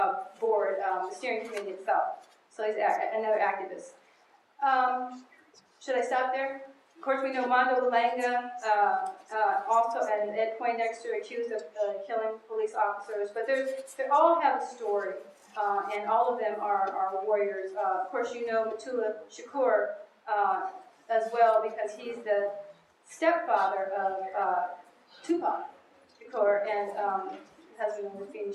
board, the steering committee itself. So he's another activist. Should I stop there? Of course, we know Mondo Langa, also and Ed Poindexter, accused of killing police officers. But they all have a story, and all of them are warriors. Of course, you know Matula Shakur as well, because he's the stepfather of Tupac Shakur and husband of Rafini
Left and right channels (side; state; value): both; identical; correlation 1.00